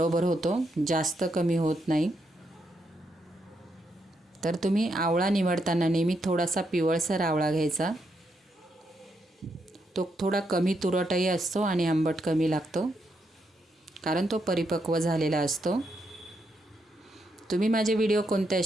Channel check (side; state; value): both; normal; correlation 0.80